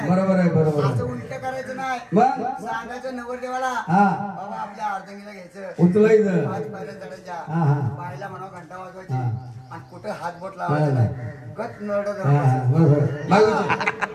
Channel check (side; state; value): both; identical; correlation 1.00